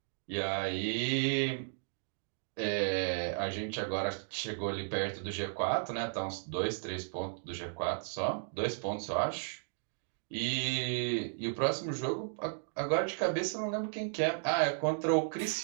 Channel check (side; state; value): left; silent; digital silence